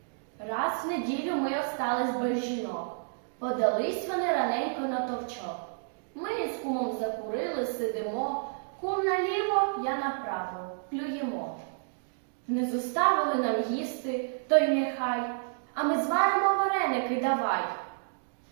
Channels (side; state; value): left; silent; digital silence